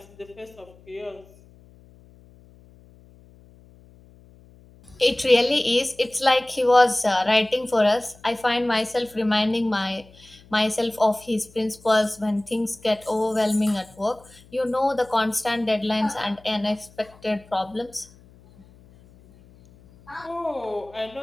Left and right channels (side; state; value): left; noise; hum, 25 dB below the sound